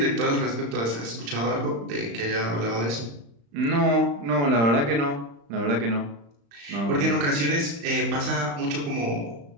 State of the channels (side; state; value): left; late; 35 ms